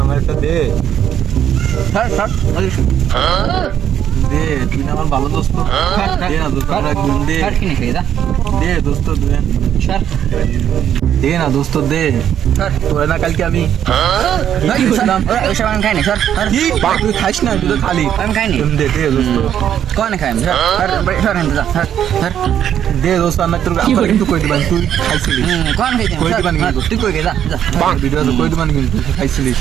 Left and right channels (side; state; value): left; quieter; 9.8 dB